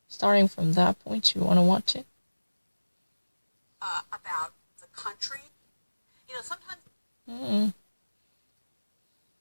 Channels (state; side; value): inverted; both; correlation -1.00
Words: Starting from that point, you want to watch it? About the country. Sometimes...